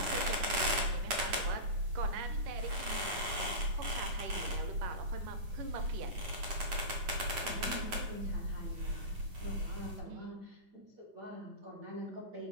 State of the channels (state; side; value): late; left; 9.7 ms